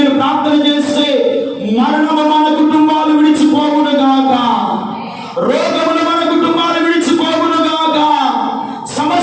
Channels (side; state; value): both; identical; correlation 1.00